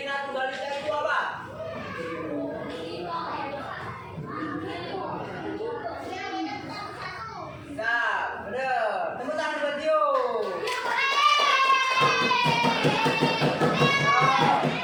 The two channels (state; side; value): identical; both; correlation 1.00